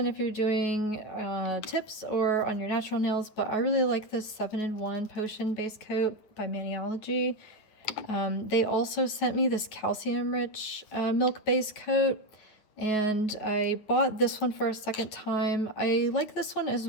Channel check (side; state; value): right; late; 9.4 ms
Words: if you're doing tips or on your natural nails, but I really like this 7-in-1 Potion Base Coat by Maniology. They also sent me this calcium-rich milk base coat, and I bought this one for a second time. I like this one as